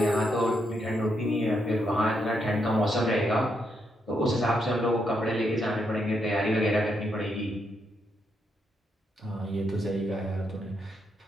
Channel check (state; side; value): normal; both; correlation 0.79